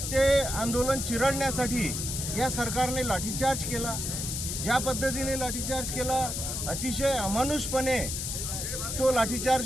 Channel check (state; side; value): noise; left; hiss, 3 dB below the sound